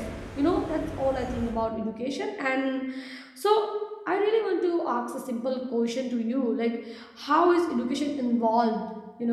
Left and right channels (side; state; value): both; identical; correlation 1.00